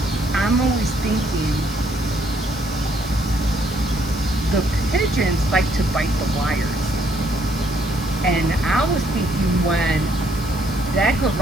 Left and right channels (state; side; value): noise; left; hiss, 15 dB below the sound